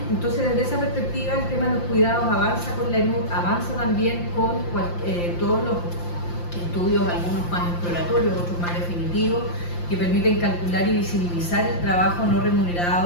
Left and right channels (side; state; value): right; late; 5.8 ms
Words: desde esa perspectiva, el tema de los cuidados avanza con la ENUD, avanza también con todos los estudios, algunos más exploratorios, otros más definitivos, que permiten calcular y visibilizar el trabajo no